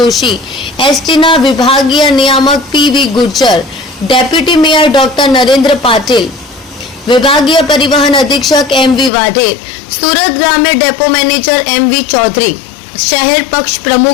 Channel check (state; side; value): drops out; right; at 9.1 s